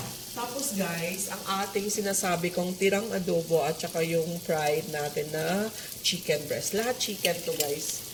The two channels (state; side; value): identical; both; correlation 1.00